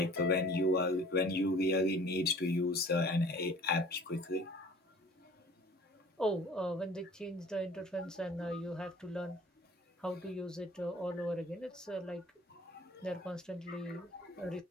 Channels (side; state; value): both; normal; correlation 0.48